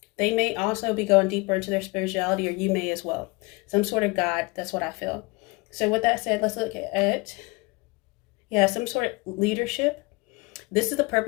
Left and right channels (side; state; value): right; quieter; 25.7 dB